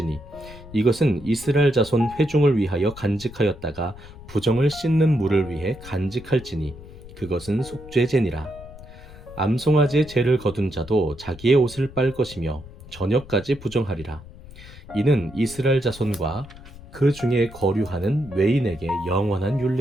이것은 이스라엘 자손 회중을 위하여 간직하였다가 부정을 씻는 물을 위해 간직할지니 그것은 속죄제니라. 암송아지의 죄를 거둔 자도 자기의 옷을 빨 것이며 저녁까지 부정하리라. 이는 이스라엘 자손과 그 중에 거류하는 외인에게 영원한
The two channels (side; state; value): left; noise; rumble, 17 dB below the sound